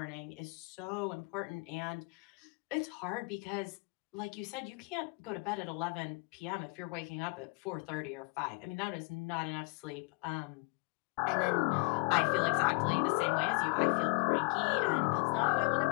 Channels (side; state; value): right; quieter; 32.3 dB